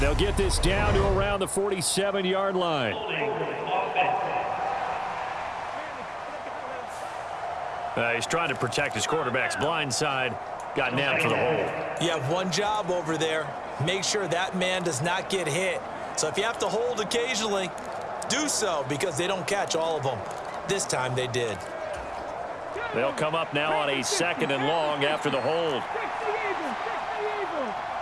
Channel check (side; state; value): both; identical; correlation 1.00